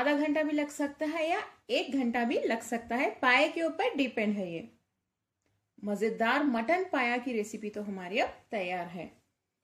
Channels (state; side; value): identical; both; correlation 1.00